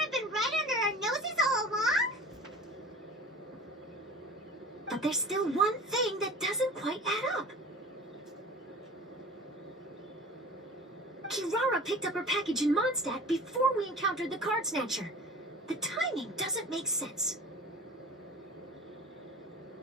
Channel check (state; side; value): normal; both; correlation 0.40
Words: been right under our noses all along? But there's still one thing that doesn't quite add up. Kirara picked up her package in Mondstadt before we encountered the card snatcher. The timing doesn't make sense.